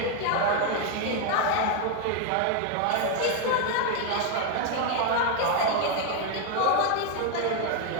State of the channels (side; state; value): both; different; correlation 0.01